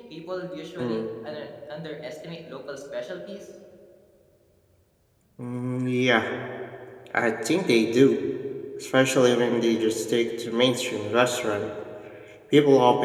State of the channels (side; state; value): both; identical; correlation 1.00